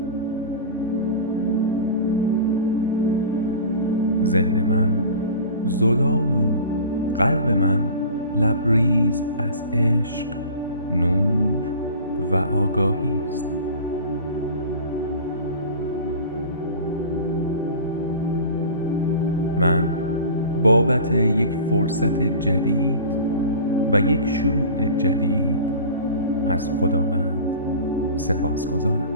ذهن من زلال و قلب من لبریز از عشق، نور و آگاهی است. من بابت یک فرصت جدید و یک شروع جدید از خداوند سپاسگزارم.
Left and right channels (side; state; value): both; inverted; correlation -0.38